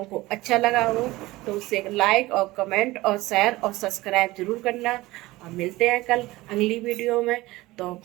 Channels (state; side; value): quieter; left; 19.2 dB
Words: को अच्छा लगा हो तो उसे लाइक और कमेंट और शेयर और सब्सक्राइब जरूर करना। और मिलते हैं कल अगली वीडियो में। तो